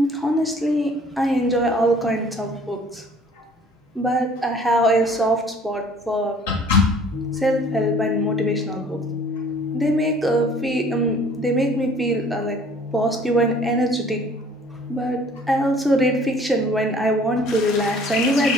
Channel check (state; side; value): normal; both; correlation 0.54